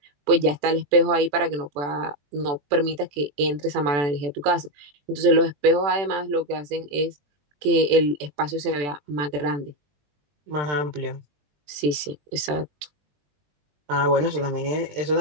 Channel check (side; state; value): left; late; 21 ms